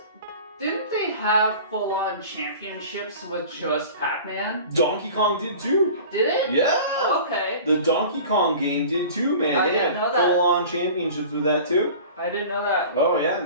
didn't they have full-on championships with just Pac-Man? Donkey Kong did too. Did it? Yeah. Okay. The Donkey Kong game did too, man. I they didn't had know that. full-on championships with that too. I didn't know that. Oh yeah,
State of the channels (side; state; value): both; inverted; correlation -0.40